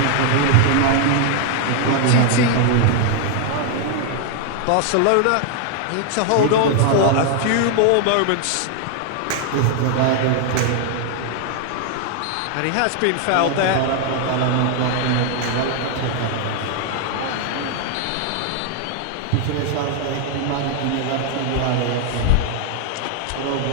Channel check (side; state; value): both; different; correlation 0.00